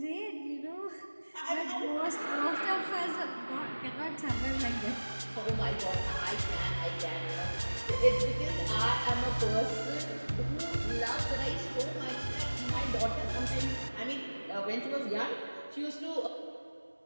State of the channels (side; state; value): both; inverted; correlation -1.00